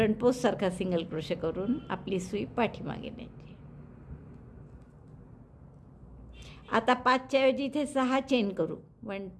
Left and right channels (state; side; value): identical; both; correlation 1.00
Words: पोस्टसारखा सिंगल क्रोशे करून आपली सुई पाठीमागे न्यायची. आता 5च्या ऐवजी इथे 6 चेन करू. 1